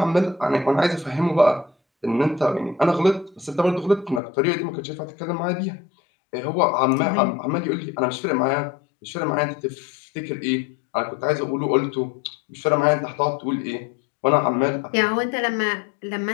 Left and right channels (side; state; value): right; drops out; at 4.2 s